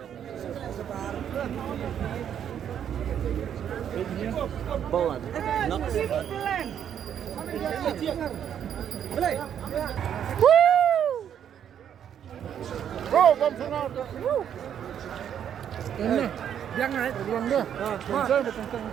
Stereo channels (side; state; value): left; quieter; 9.2 dB